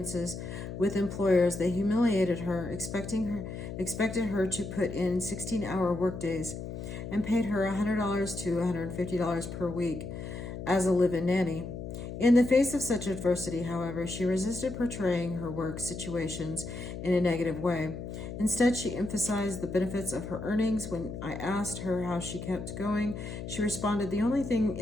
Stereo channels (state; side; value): noise; left; hum, 8 dB below the sound